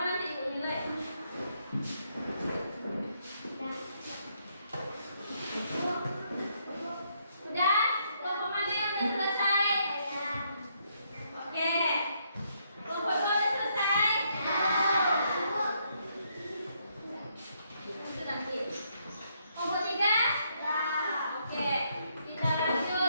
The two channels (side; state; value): both; inverted; correlation -0.74